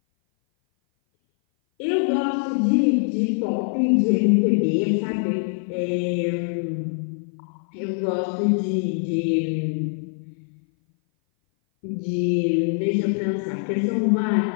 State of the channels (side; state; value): right; silent; 58 dB below the other